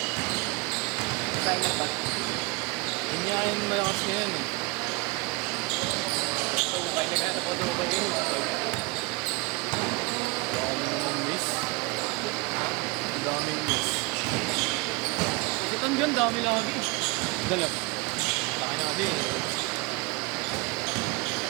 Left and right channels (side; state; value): left; quieter; 25.0 dB